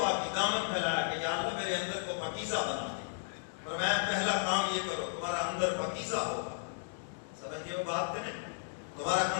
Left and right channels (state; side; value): silent; right; digital silence